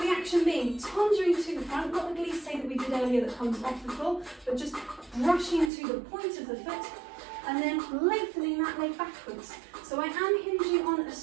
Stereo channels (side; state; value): left; drops out; at 5.7 s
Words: action being tenduing to the front, not the glissé that we did earlier that comes off the floor, but just brushing to the point of the foot and then lengthening that leg backwards. So I am hinging on a